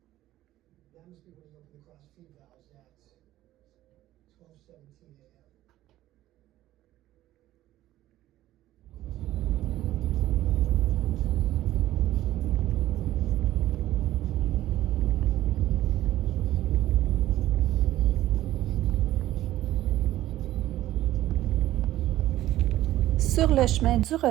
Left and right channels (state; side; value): quieter; left; 14.6 dB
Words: That must be when he opened the cross feed valves at 12:17 a.m. Sur le chemin du